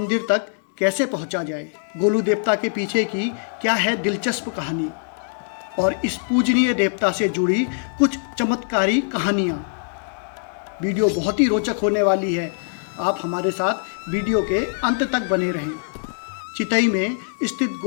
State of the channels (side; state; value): right; silent; digital silence